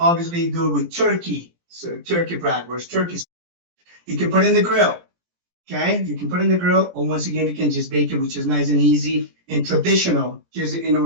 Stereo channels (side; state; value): left; late; 17 ms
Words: do it with turkey. So turkey bratwurst, turkey. You can put it in the grill, okay? You can put it in the grill, or once again, you can just bake it, which is nice and easy and traditional, just in